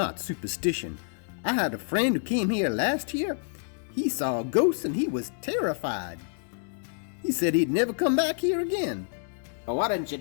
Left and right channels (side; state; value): right; silent; 59 dB below the other